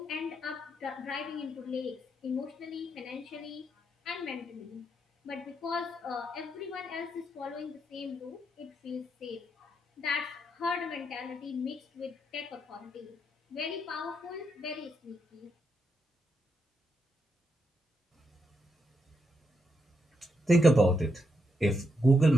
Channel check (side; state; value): both; normal; correlation 0.81